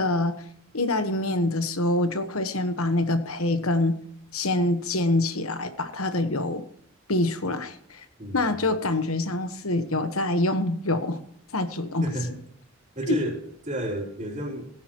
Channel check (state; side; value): normal; both; correlation 0.31